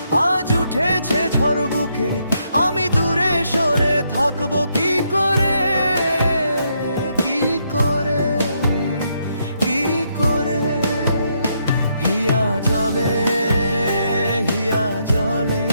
আজ উঠেছে ঝড় বুকে, আমি দূরে সরে থাকবো কি করে, কি করে, কি করে। হিয়া জলে, হিয়া জলে,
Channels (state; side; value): inverted; both; correlation -0.76